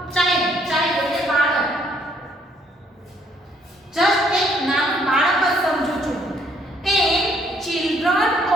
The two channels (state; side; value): normal; both; correlation 0.66